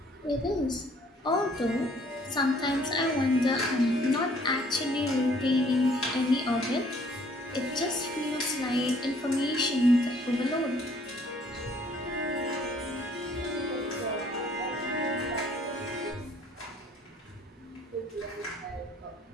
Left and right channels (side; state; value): both; normal; correlation 0.60